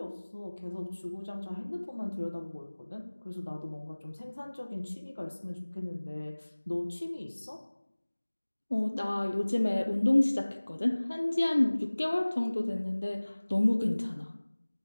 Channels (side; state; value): both; inverted; correlation -1.00